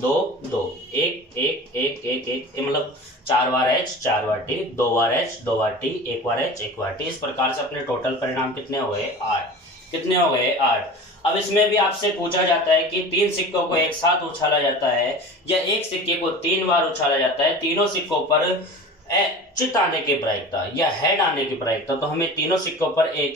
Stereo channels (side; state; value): both; normal; correlation 0.36